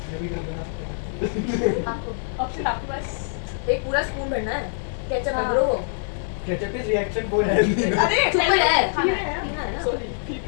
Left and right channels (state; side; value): silent; right; 56 dB below the other